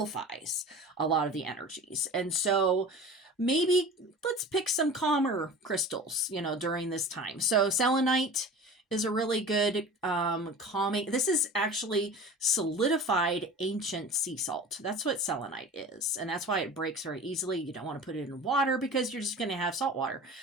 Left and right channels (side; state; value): both; normal; correlation 0.37